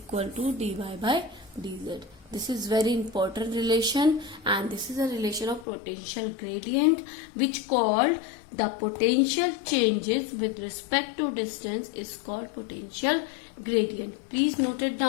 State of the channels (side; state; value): right; drops out; at 5.7 s